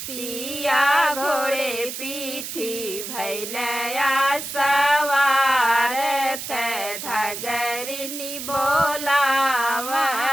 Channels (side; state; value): right; noise; hiss, 7 dB below the sound